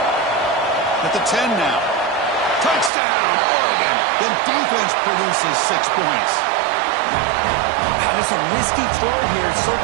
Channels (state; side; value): drops out; left; at 2.9 s